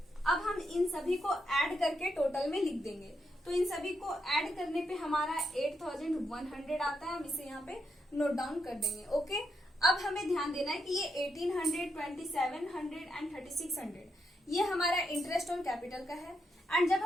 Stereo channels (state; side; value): normal; both; correlation 0.82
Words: अब हम इन सभी को ऐड करके टोटल में लिख देंगे। तो इन सभी को ऐड करने पे हमारा 8,100 आता है, हम इसे यहाँ पे नोट डाउन कर देंगे। ओके, अब हमें ध्यान देना है कि ये 1800, 2700 एंड 3600 ये हमारा इंटरेस्ट ऑन कैपिटल का है। एंड जब